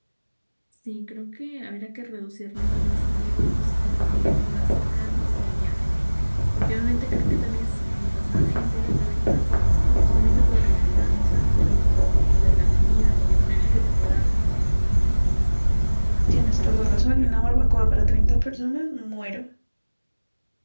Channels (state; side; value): inverted; both; correlation -1.00